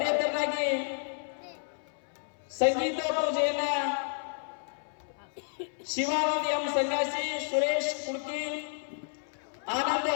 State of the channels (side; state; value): right; silent; 57 dB below the other